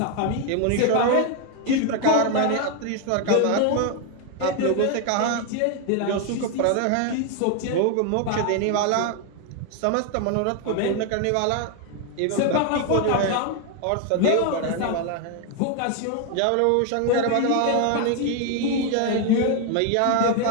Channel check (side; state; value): both; different; correlation 0.01